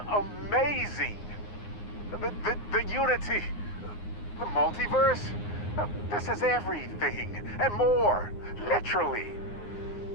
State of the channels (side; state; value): right; late; 9.7 ms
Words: amazing! The unity, the multiverse, this is everything and more, literally.